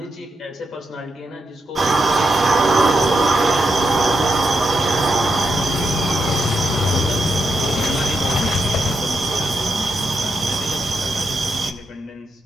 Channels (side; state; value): both; normal; correlation 0.83